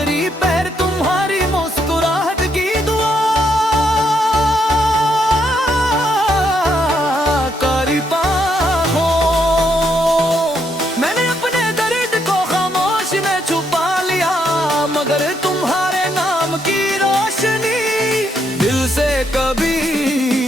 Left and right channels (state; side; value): normal; both; correlation 0.76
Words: पहर तुम्हारी मुस्कुराहट की दुआ करता हूँ। मैंने अपने दर्द को खामोश में छुपा लिया मगर तुम्हारे नाम की रोशनी दिल से कभी